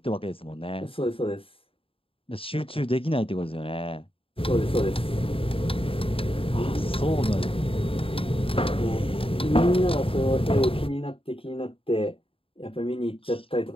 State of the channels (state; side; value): late; right; 0.27 ms